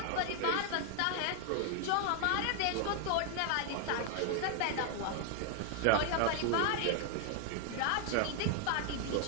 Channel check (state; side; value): different; both; correlation 0.00